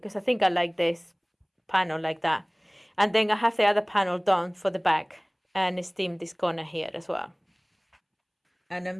I think I like this panel like that. And then I have the other panel done for the back and steam this corner here as well. And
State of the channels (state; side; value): identical; both; correlation 1.00